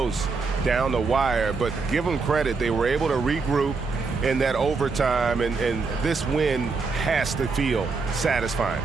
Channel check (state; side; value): quieter; left; 4.4 dB